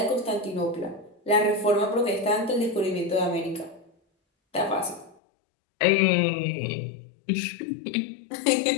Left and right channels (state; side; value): drops out; right; at 5.2 s